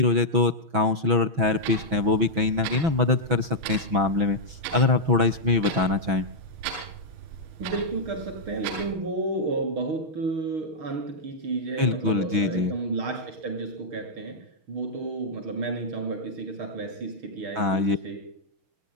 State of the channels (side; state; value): left; late; 6.1 ms